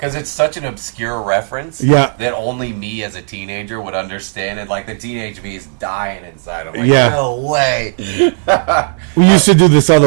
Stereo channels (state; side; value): silent; left; digital silence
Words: it's such an obscure reference that only me as a teenager would understand. And, like, the teenage me is dying inside. I'm like, no way. We used to do this